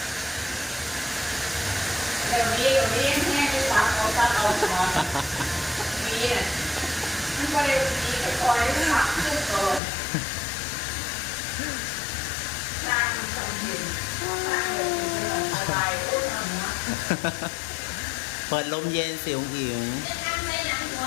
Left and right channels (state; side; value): drops out; right; at 9.8 s